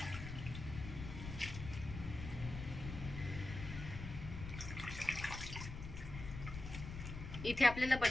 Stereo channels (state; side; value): noise; left; rumble, 8 dB below the sound